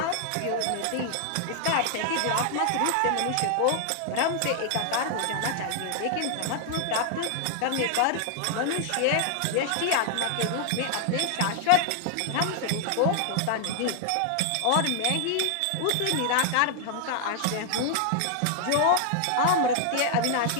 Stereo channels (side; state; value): both; different; correlation 0.00